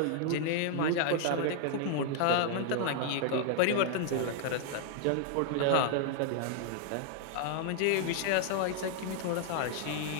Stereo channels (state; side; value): different; both; correlation 0.00